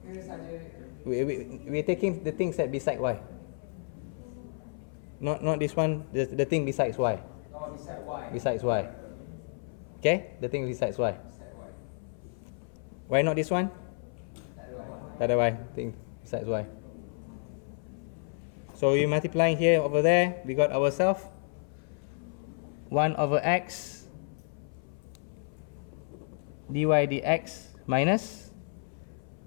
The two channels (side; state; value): right; silent; 57 dB below the other